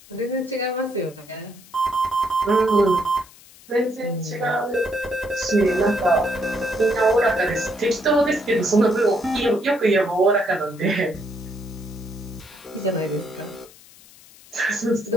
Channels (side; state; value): left; noise; hiss, 23 dB below the sound